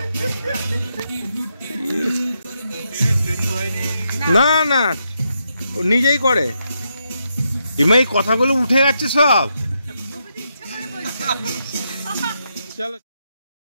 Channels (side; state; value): both; inverted; correlation -0.81